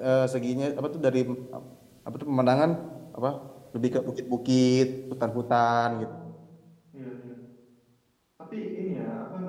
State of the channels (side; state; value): both; identical; correlation 1.00